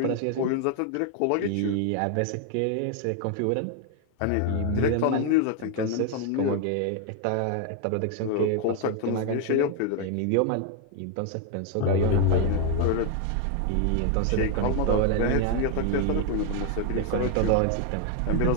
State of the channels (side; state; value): both; different; correlation 0.01